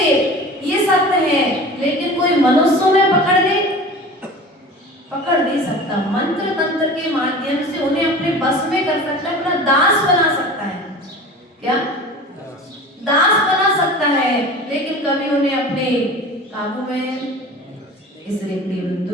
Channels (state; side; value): normal; both; correlation 0.38